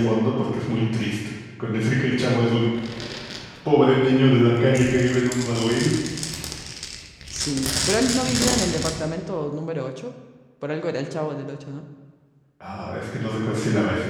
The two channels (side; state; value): both; identical; correlation 1.00